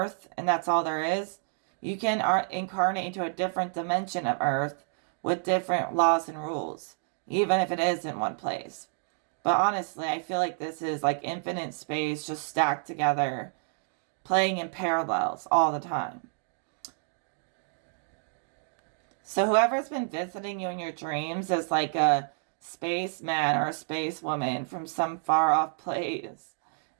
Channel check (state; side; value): silent; left; digital silence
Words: and that's all there is, you can incarnate into a different dimension of Earth with different laws and rules, even if it is in one place. But honestly, I feel like this is like infinite space just stacked together, playing in parallels all the time. So whoever's been visiting you in your dreams is like a spaceman or a space woman from some far off place.